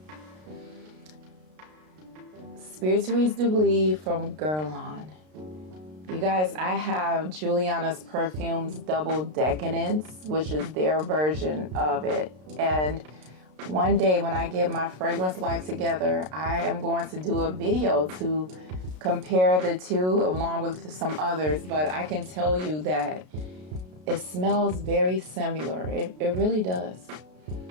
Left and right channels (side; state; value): left; late; 33 ms